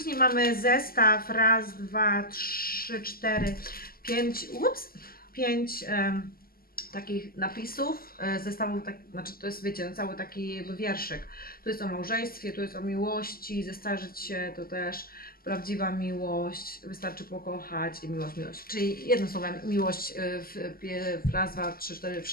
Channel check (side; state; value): right; late; 0.43 ms